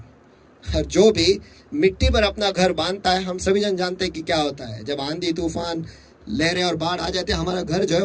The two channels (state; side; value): identical; both; correlation 1.00